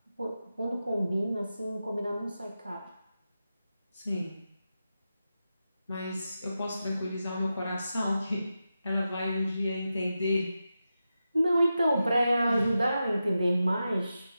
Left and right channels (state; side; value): inverted; both; correlation -0.90